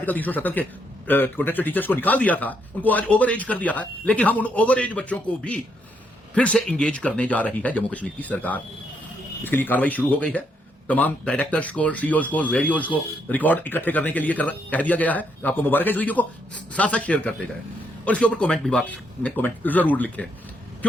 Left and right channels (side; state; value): both; normal; correlation 0.75